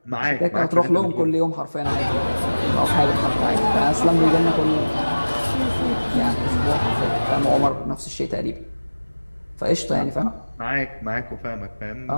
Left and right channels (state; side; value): inverted; both; correlation -1.00